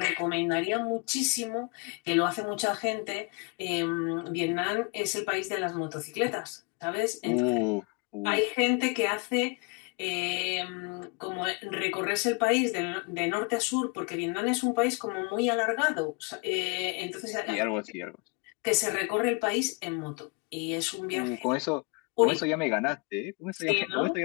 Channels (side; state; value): right; quieter; 31.4 dB